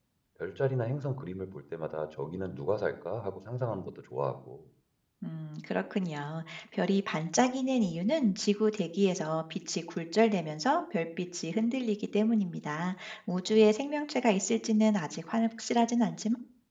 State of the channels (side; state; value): both; identical; correlation 1.00